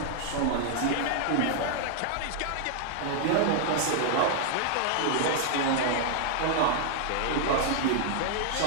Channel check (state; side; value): different; both; correlation 0.00